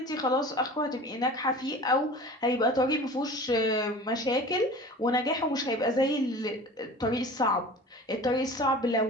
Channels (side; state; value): both; normal; correlation 0.39